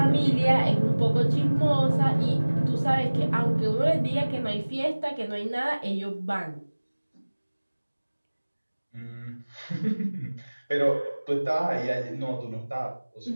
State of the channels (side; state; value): both; inverted; correlation -1.00